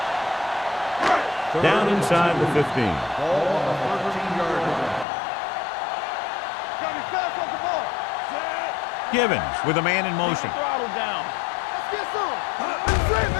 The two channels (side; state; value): right; drops out; at 5.1 s